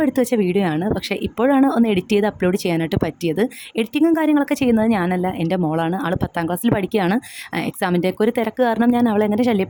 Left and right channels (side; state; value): both; identical; correlation 1.00